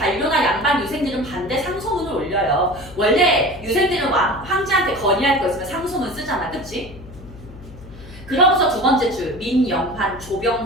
양반 유생들은 반대 상소문을 올려요. 원래 유생들은 황제한테 건의할 거 있으면 상소문 쓰잖아. 그치? 그러고서 두 번째 줄 민영환,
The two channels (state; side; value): noise; left; hum, 17 dB below the sound